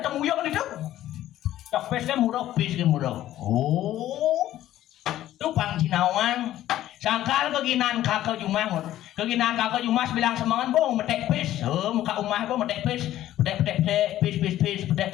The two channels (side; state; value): right; quieter; 13.4 dB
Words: itu cok pesnya murah oh itu Bang Cinawang sangkal keginan kakak Jumas bilang semangat bong metek pes muka umah bong metek pes pes